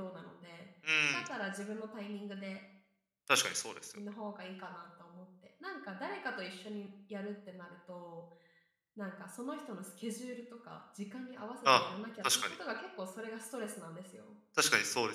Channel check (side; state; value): both; identical; correlation 1.00